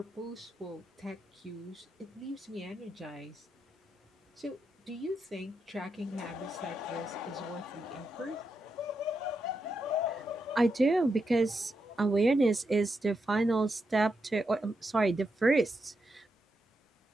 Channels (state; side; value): normal; both; correlation 0.84